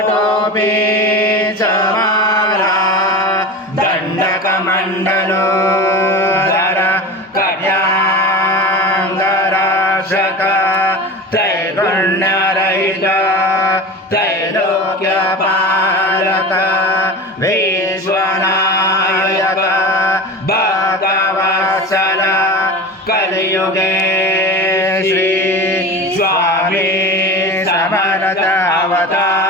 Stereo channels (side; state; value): both; normal; correlation 0.30